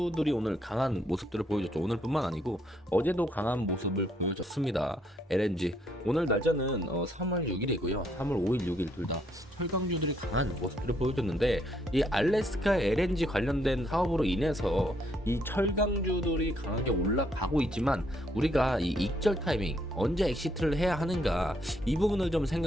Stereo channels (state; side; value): normal; both; correlation 0.71